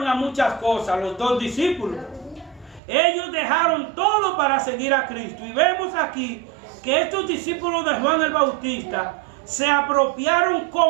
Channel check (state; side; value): drops out; left; at 2.8 s